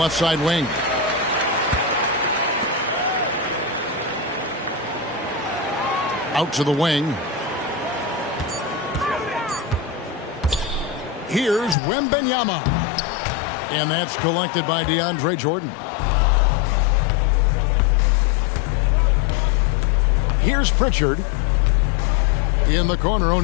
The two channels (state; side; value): drops out; right; at 11.8 s